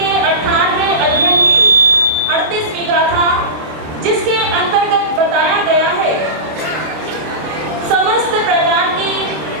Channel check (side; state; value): left; late; 26 ms